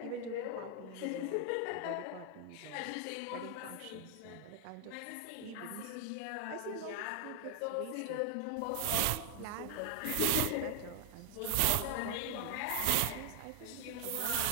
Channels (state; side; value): different; both; correlation 0.00